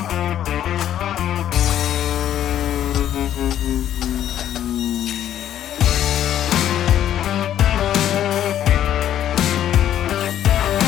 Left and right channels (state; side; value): quieter; right; 11.1 dB